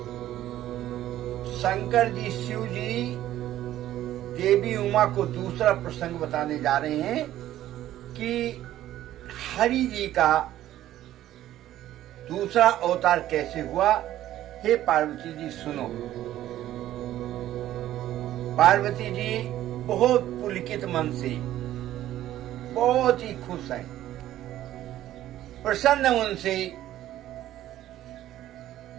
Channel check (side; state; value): left; quieter; 13.3 dB